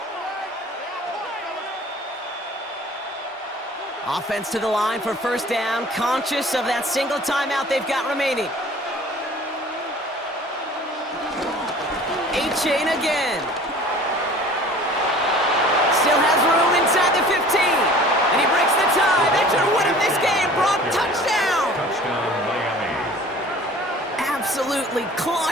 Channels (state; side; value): normal; both; correlation 0.46